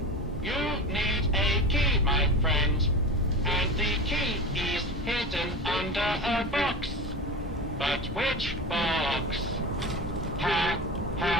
You need a key, my friend. And the key is hidden under a box. But which box? Ha,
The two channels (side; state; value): both; normal; correlation 0.28